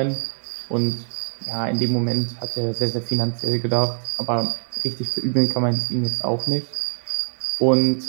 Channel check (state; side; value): silent; left; digital silence